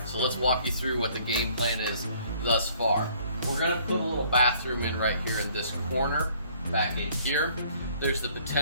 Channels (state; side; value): inverted; both; correlation -0.59